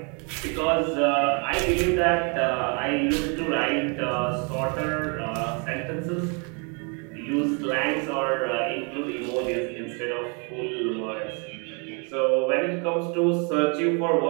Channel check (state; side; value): quieter; left; 35.3 dB